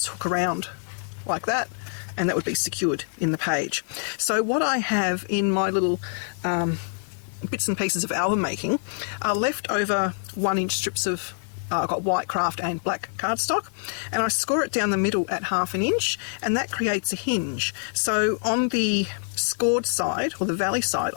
hook around like that, and that would be secured in the page. So what I have in my little bits and pieces of album making are leftover 1-inch strips of I've got white craft and black cardstock, and I score it down the middle at 1/2 inch, and that creates a hinge. So on the scored side, or the valley side,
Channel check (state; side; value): silent; right; digital silence